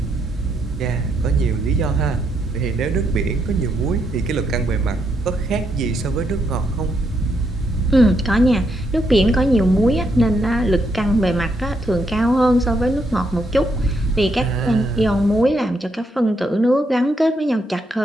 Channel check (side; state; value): both; normal; correlation 0.78